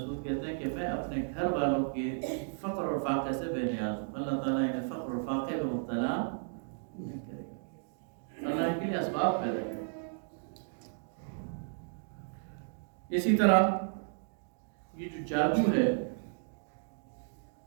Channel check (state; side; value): silent; left; digital silence